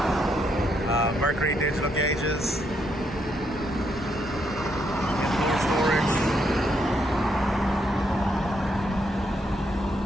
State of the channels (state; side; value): normal; both; correlation 0.76